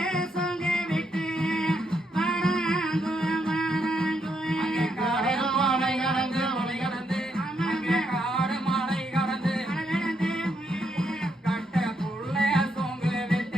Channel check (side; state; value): both; normal; correlation 0.78